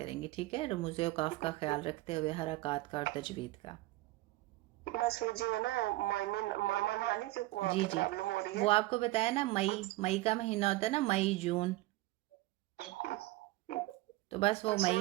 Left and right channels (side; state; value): left; quieter; 18.7 dB